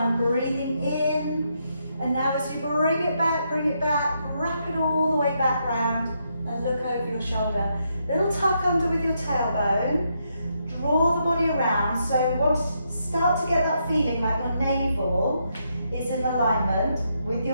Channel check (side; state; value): both; inverted; correlation -0.79